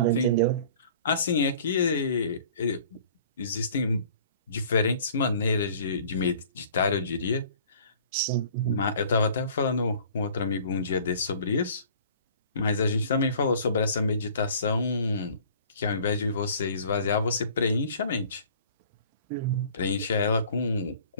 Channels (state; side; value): inverted; both; correlation -0.50